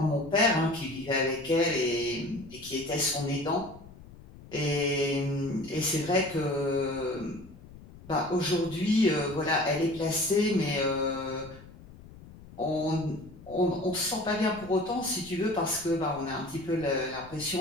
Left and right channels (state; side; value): noise; left; rumble, 19 dB below the sound